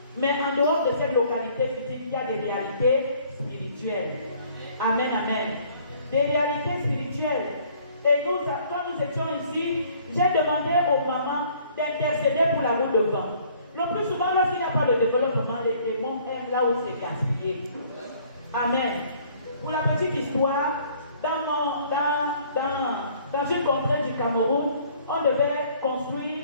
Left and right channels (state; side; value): inverted; both; correlation -0.58